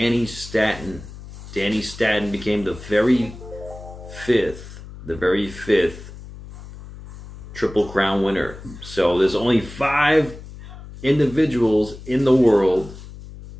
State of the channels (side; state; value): left; noise; hum, 15 dB below the sound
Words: Statton. Danny Statton became the very fifth Triple Crown winner. So there's only 5 individuals in the world,